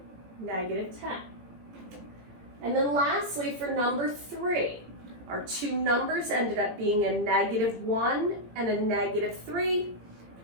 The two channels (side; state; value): left; late; 18 ms